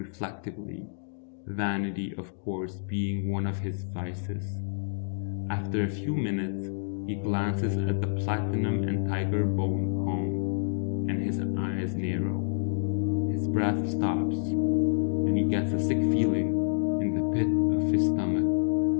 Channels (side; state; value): right; silent; digital silence